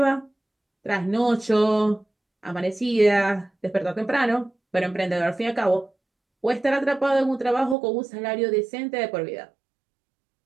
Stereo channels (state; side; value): drops out; left; at 7.8 s